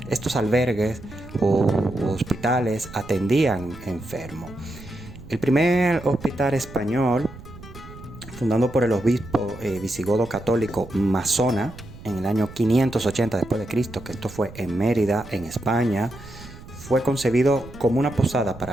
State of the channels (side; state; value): right; noise; rumble, 16 dB below the sound